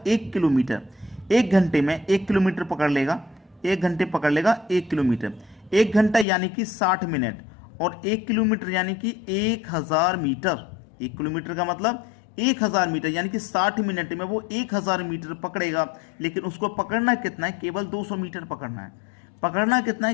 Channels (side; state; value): right; drops out; at 6.2 s